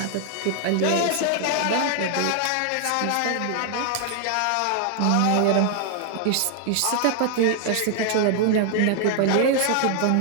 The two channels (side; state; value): both; different; correlation 0.00